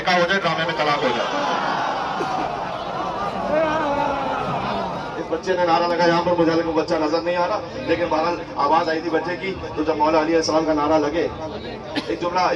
हो जाए, ड्रामे में तलाक हो जाए। इस बच्चे ने नारा लगा, यहाँ पर मुझे को बच्चा नजर नहीं आ रहा, लेकिन बहरहाल आवाज आई थी बच्चे की। तो जब मौला अली अलैहिस्सलाम का नारा लगे, एक जुमला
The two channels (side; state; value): both; identical; correlation 1.00